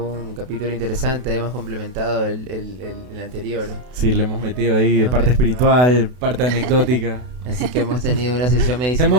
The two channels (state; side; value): late; left; 32 ms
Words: un capítulo interesante. Hemos complementado el anterior. Sí, le hemos metido ahí parte espiritual, parte anecdótica. Así que hemos tenido una sesión medicinal.